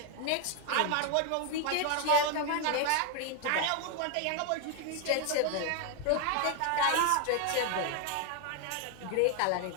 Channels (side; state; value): both; different; correlation 0.01